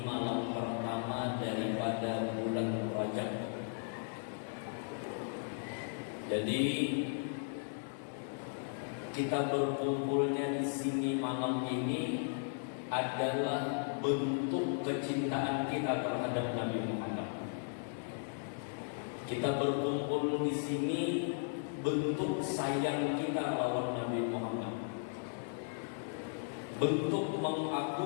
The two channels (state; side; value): silent; right; digital silence